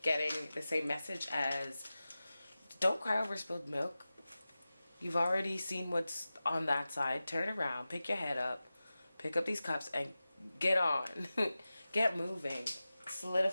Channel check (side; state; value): both; inverted; correlation -0.95